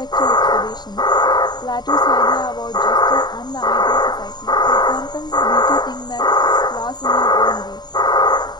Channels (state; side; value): late; right; 0.20 ms